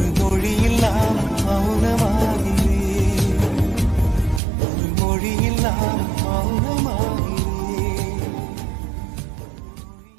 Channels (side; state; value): left; drops out; at 4.4 s